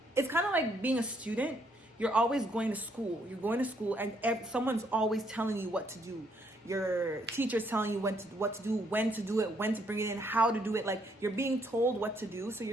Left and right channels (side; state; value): both; normal; correlation 0.71